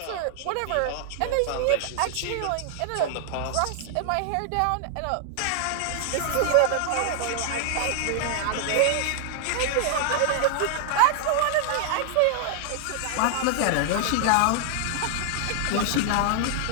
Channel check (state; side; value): different; both; correlation 0.00